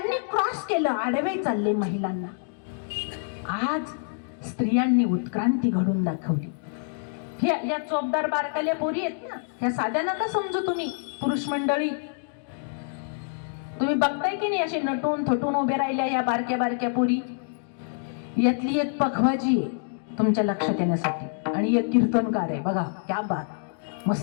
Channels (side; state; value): right; silent; digital silence